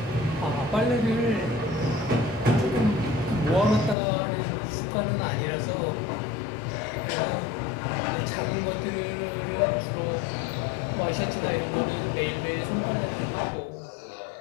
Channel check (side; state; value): right; drops out; at 4.0 s